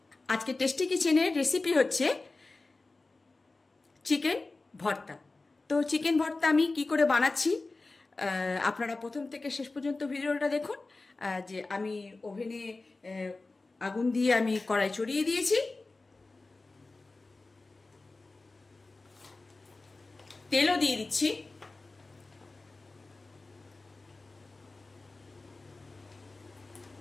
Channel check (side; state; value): right; quieter; 3.4 dB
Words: আজকে টেস্টি কিচেনের রেসিপি হচ্ছে চিকেন ভর্তা। তো চিকেন ভর্তা আমি কি করে বানাচ্ছি আপনারা প্রথম থেকে শেষ পর্যন্ত ভিডিওটা দেখুন। যে আমি ওভেনে আগুন দিয়ে আমি কড়াই চড়িয়ে দিয়েছি, তেলও দিয়ে দিচ্ছি।